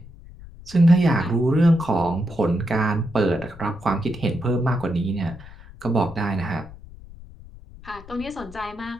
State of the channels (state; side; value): noise; left; rumble, 18 dB below the sound